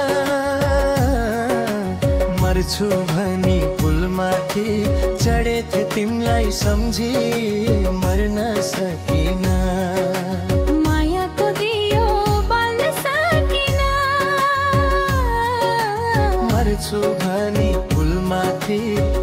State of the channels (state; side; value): identical; both; correlation 1.00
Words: मर्छु भनी पुलमाथि चढेथे तिमीलाई सम्झी मर्न सकिन मायाको दियो बाल्न सकिन मर्छु भनी पुलमाथि